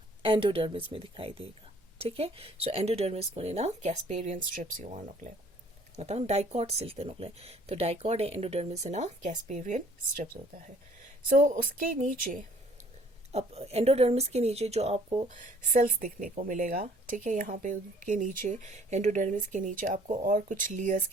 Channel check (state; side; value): normal; both; correlation 0.57